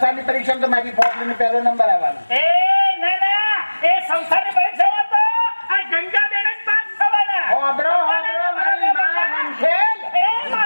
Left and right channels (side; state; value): both; inverted; correlation -1.00